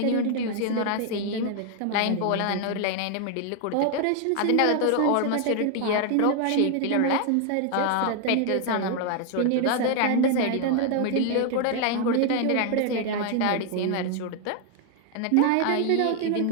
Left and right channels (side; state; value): both; different; correlation 0.00